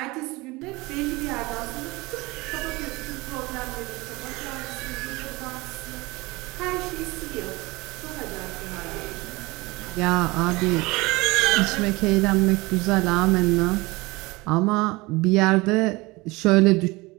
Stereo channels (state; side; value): quieter; left; 22.8 dB